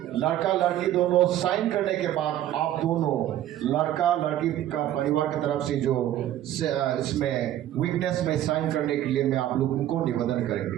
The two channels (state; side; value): quieter; left; 12.6 dB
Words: लड़का लड़की दोनों साइन करने के बाद आप दोनों लड़का लड़की का परिवार की तरफ से जो इसमें विटनेस में साइन करने के लिए मैं आप लोगों को निवेदन